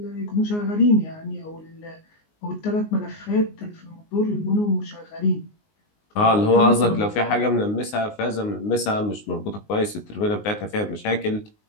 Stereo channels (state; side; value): late; right; 19 ms